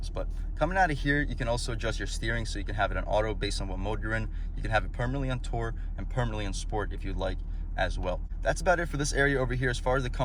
But coming out of here, you can also adjust your steering, so you can have it on auto based on what mode you're in. You can have it permanently on Tour and permanently on Sport if you'd like as well. That's about it for this area over here. As far as the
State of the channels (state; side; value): identical; both; correlation 1.00